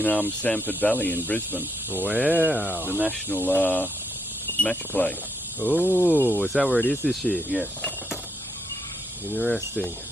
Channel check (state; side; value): normal; both; correlation 0.76